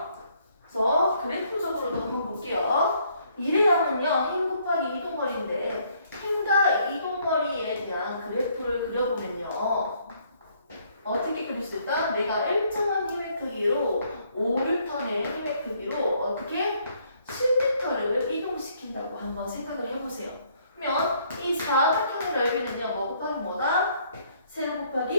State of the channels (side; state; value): both; inverted; correlation -0.67